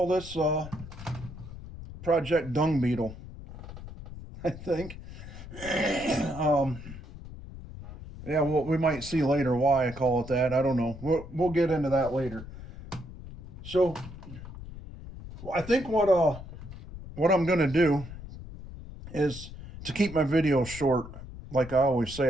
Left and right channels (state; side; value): noise; left; rumble, 13 dB below the sound